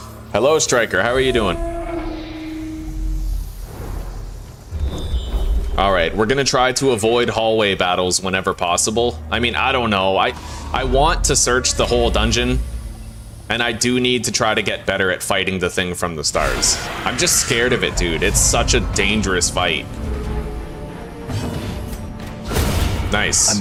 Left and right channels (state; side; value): identical; both; correlation 1.00